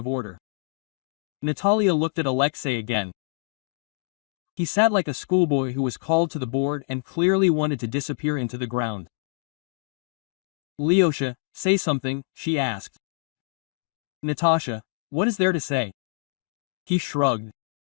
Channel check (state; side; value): silent; right; digital silence